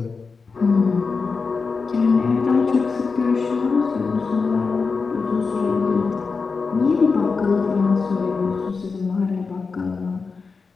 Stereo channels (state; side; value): quieter; right; 4.7 dB